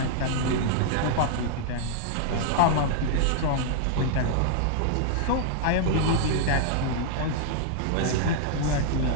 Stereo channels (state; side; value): different; both; correlation -0.01